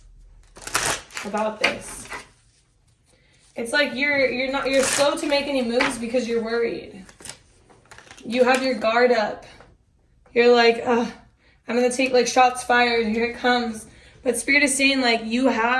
about this? It's like you're slow to make any moves because you're worried. You have your guard up. You're like, I'm gonna take like shots fired, here it comes. But Spirit is saying like you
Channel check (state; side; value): identical; both; correlation 1.00